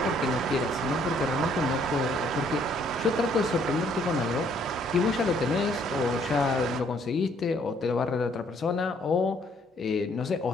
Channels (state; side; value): normal; both; correlation 0.65